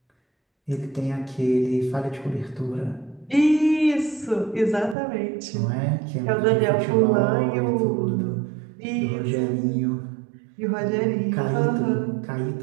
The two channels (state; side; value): drops out; left; at 5.0 s